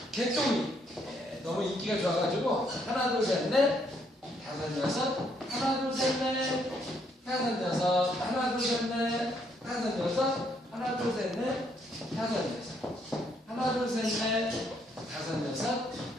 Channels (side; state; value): both; normal; correlation 0.71